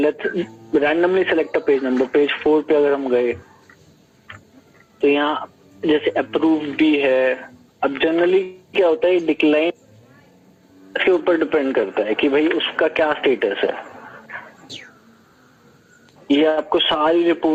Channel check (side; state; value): both; identical; correlation 1.00